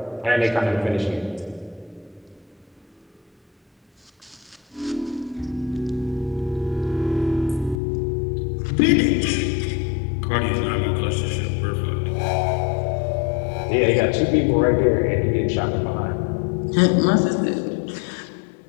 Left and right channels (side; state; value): right; drops out; at 7.8 s